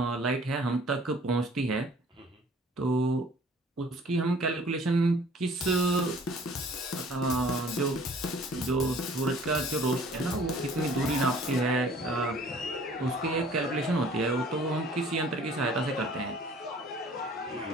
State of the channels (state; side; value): normal; both; correlation 0.53